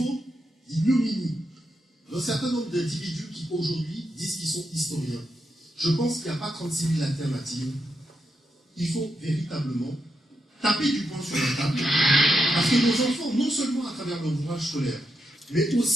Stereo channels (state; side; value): normal; both; correlation 0.84